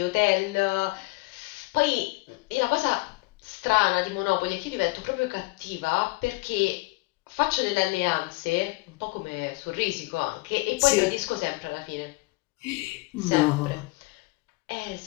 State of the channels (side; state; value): right; quieter; 23.6 dB